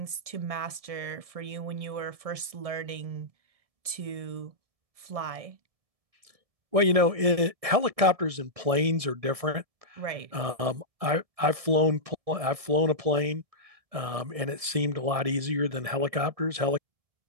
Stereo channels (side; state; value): left; late; 1.7 ms